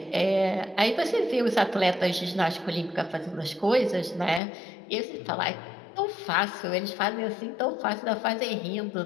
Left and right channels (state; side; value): drops out; right; at 4.4 s